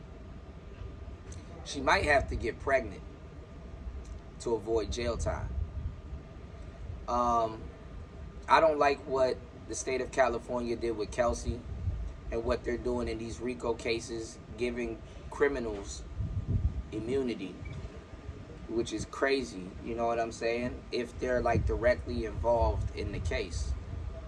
She might have to get pregnant to avoid jail time. I don't like what the state of California did with Kelsey and what they're doing in these RICO cases, giving criminals immunity, which is crazy, you know what I'm saying? If they're like directly involved in the case,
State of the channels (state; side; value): identical; both; correlation 1.00